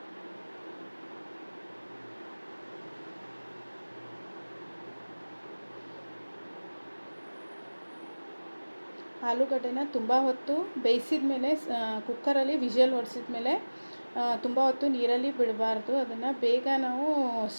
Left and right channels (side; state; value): both; inverted; correlation -1.00